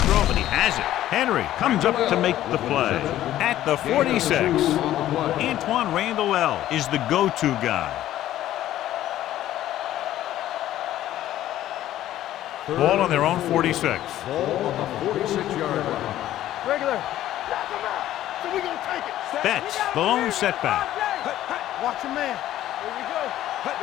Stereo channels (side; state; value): right; quieter; 13.2 dB